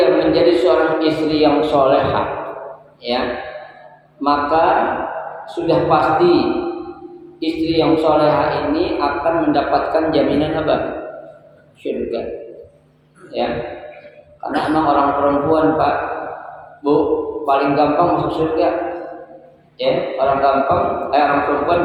menjadi seorang istri yang solehah, ya, maka sudah pasti istri yang solehah ini akan mendapatkan jaminan apa? Surga. Ya, karena emang orang perempuan, Pak, Bu, paling gampang masuk surga. Ya, orang perempuan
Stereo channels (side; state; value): both; identical; correlation 1.00